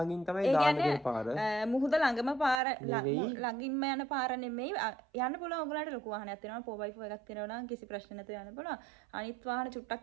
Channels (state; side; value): drops out; left; at 2.6 s